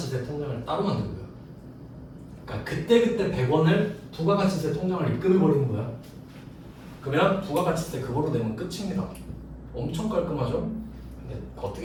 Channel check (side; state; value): both; identical; correlation 1.00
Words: 통장을 따로 만들고요. 그러니까 그때 100원을 부가가치세 통장을 입금해버리는 거야. 그러면 부가가치세 그거로 내면 끝입니다. 엄청 깔끔하죠? 근데